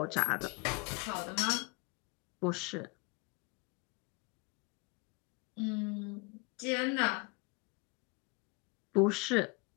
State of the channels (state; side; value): quieter; right; 29.1 dB